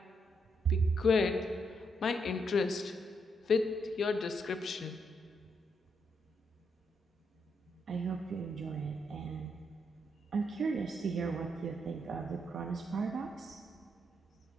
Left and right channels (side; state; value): both; normal; correlation 0.78